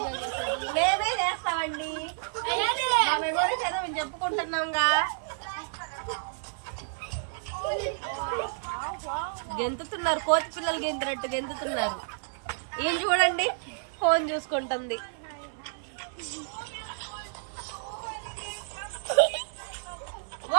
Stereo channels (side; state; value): left; silent; digital silence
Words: మేమే చేస్తామండి. మెమోరీస్ ఏదో మేము చెప్పుకుంటున్నాంగా. గెంతుతున్నారు, కోతి పిల్లలు గెంతున్నట్టు గెంతుతున్నారు. ఏం చూడండి, ఫోన్ చూసుకుంటుంది.